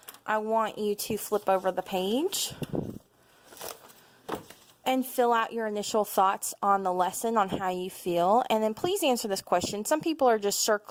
I want you to flip over the page and fill out your initial thoughts on the lesson, on how you feel. And then please answer this question. Some people are just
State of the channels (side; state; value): both; identical; correlation 1.00